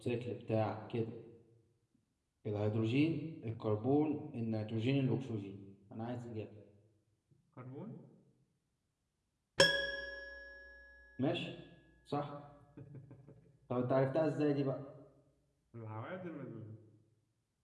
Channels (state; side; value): identical; both; correlation 1.00